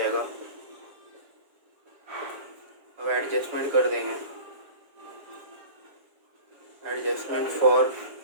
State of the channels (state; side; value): late; left; 7.3 ms